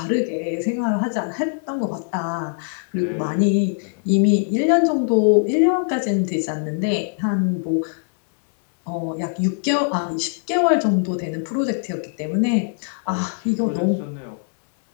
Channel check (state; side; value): silent; right; digital silence